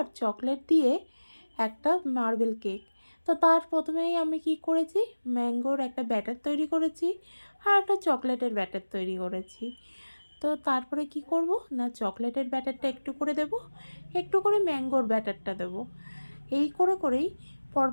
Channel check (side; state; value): both; inverted; correlation -1.00